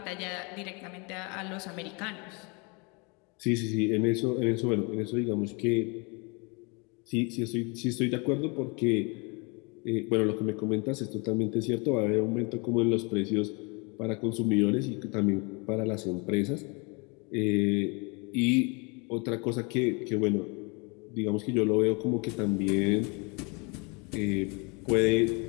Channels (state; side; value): quieter; right; 31.1 dB